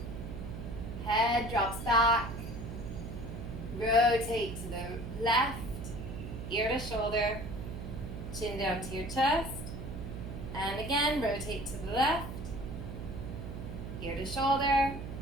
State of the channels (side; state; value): right; noise; hum, 8 dB below the sound